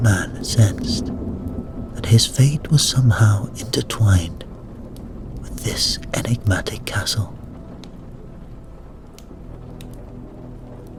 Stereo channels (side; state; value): both; identical; correlation 1.00